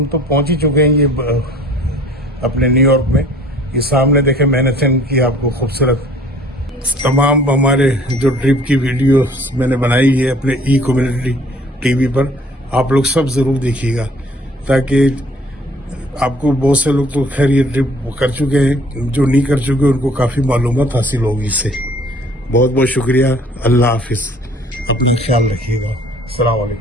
तो पहुंच ही चुके हैं ये अपने न्यूयॉर्क में। ये सामने देखे मैनहट्टन की आपको खूबसूरत तमाम हमारे जो ट्रिप की वीडियो मैंने बनाई है अपने कम्युनिटी टीवी पर, आप लोग सब जरूर देखिएगा ताकि आपको बहुत से लोग तो खैर ये ट्रिप कर चुके हैं, जो नहीं कर चुके उनको काफी मालूमात हासिल होगी इससे। बहुत बहुत शुक्रिया। अल्लाह हाफिज, अपना ख्याल रखिएगा। अस्सलाम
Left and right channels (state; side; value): normal; both; correlation 0.54